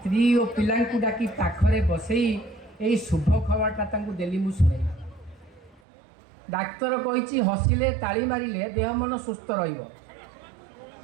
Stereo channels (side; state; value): left; drops out; at 5.8 s